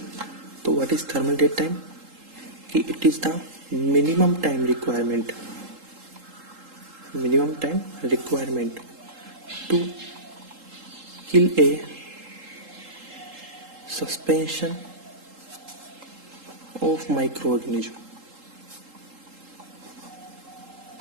तो what is thermal death time? कि it is the minimum time requirement to kill a suspension of micro organism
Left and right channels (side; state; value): left; late; 3.8 ms